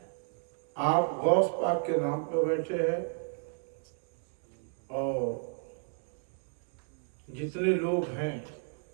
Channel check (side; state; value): left; silent; 56 dB below the other